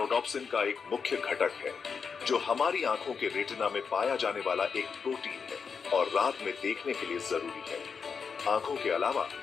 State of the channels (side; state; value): right; quieter; 5.8 dB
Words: का एक मुख्य घटक है, जो हमारी आंखों के रेटिना में पाया जाने वाला एक प्रोटीन है और रात में देखने के लिए जरूरी है। आंखों के अलावा